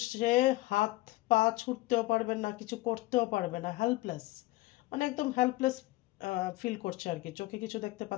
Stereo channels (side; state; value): right; quieter; 19.3 dB